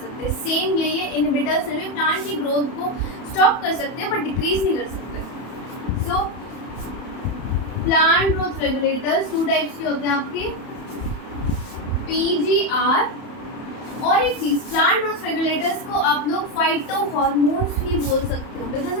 सेम यही है, इनहिबिटर्स में भी प्लांट की ग्रोथ को स्टॉप कर सकते हैं बट डिक्रीज नहीं कर सकते। सो प्लांट ग्रोथ रेगुलेटर्स 2 टाइप्स के होते हैं आपके, PGR, और एक चीज़, प्लांट ग्रोथ रेगुलेटर्स को आप लोग फाइटोहॉर्मोन्स भी बोल सकते हो, बिकॉज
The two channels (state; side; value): late; right; 31 ms